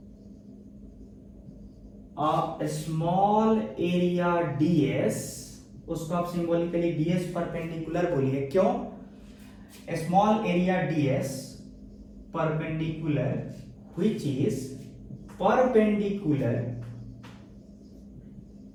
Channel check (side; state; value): both; identical; correlation 1.00